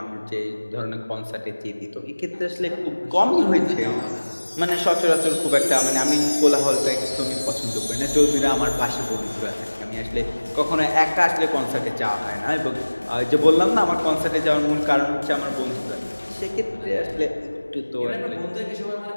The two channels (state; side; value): inverted; both; correlation -1.00